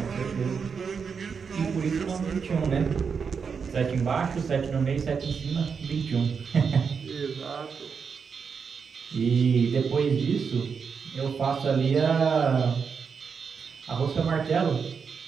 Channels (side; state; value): left; quieter; 6.0 dB